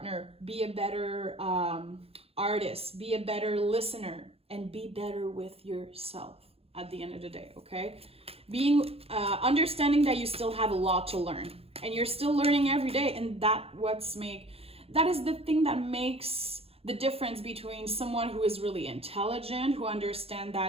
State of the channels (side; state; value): left; late; 0.28 ms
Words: be a better artist, be a better listener, and be better with yourself at the end of the day, okay? Understanding that you still have a lot to learn, and you're still learning every day, and that is the thing that makes the difference between someone who is really intelligent, who understands